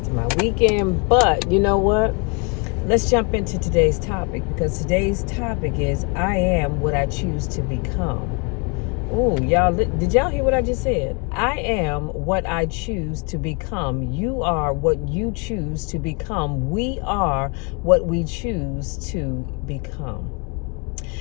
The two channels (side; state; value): right; quieter; 33.1 dB